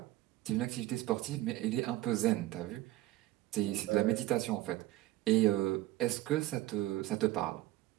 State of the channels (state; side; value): quieter; left; 16.2 dB